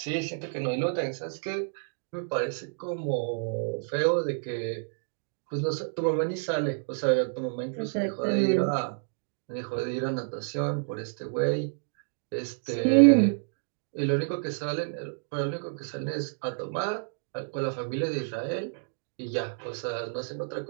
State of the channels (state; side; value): silent; left; digital silence